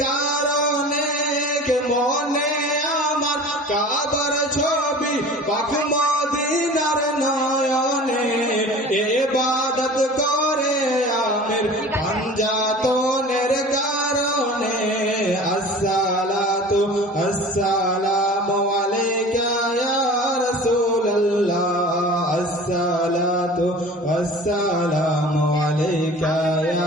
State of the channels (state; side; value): normal; both; correlation 0.41